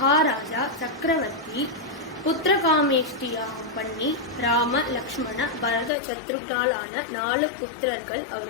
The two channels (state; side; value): drops out; right; at 5.9 s